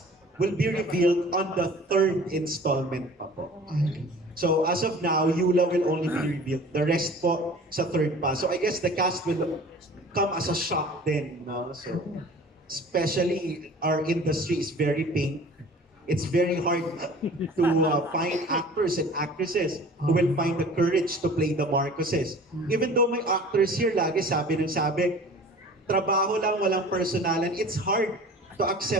will be revealed on the third installment pa po. So as of now, Yula will only be revealed. The rest po sa third pa. So I guess the cast will come as a shock then. No? So especially our industry is very pink. It's very hard to find actors and actresses who will find the courage to play the Marcoses. Even though may actors here, lagi sabi, trabaho lang, walang personalan. It's hard to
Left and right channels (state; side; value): normal; both; correlation 0.44